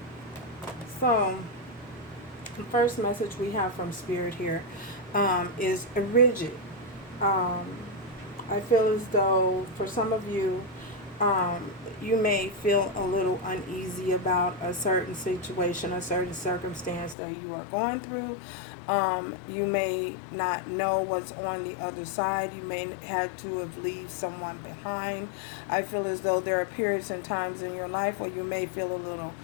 So, the first message we have from Spirit here is rigid. I feel as though for some of you, you may feel a little uneasy about a certain situation, a certain circumstance that you are going through. You may not know what's on the other side. You may have to have left someone behind. I feel as though there are periods and times in your life where you may feel a little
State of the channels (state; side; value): drops out; right; at 17.2 s